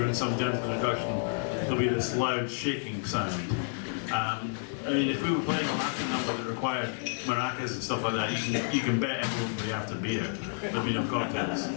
some gentle introduction there'll be this loud shaking sound. I mean, if we were playing a Latin number that required maracas and stuff like that, you can bet everyone would be after beer. There'd be no cocktails.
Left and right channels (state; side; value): silent; right; digital silence